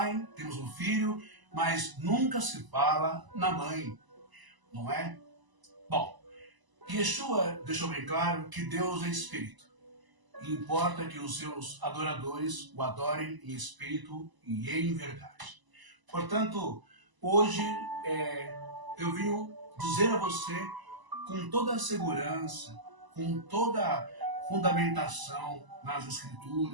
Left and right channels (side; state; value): left; late; 1.0 ms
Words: temos o Filho, mas nunca se fala na mãe, não é? Bom, Yeshua deixou bem claro que Deus é Espírito. E importa que os seus adoradores o adorem em espírito e em verdade. Portanto, hoje eu vim dizer a você com toda a segurança, com toda a fundamentação nas